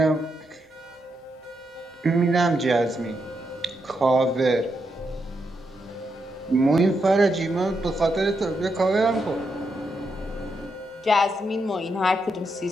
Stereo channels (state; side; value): normal; both; correlation 0.82